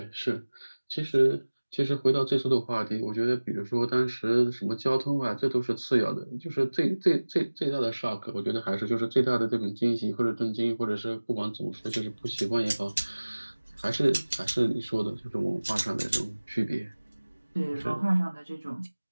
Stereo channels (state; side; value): inverted; both; correlation -1.00